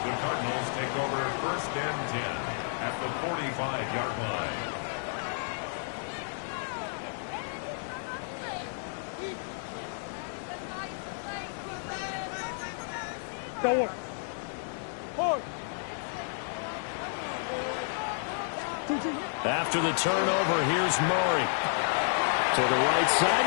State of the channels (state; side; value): silent; right; digital silence